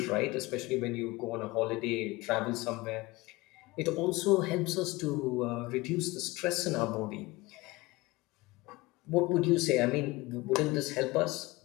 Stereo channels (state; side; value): quieter; right; 21.7 dB